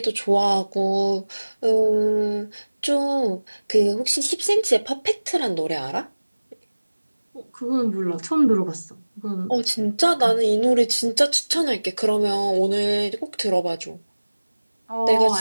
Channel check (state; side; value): inverted; both; correlation -1.00